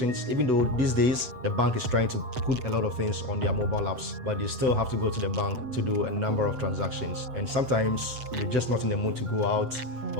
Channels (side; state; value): left; late; 7.9 ms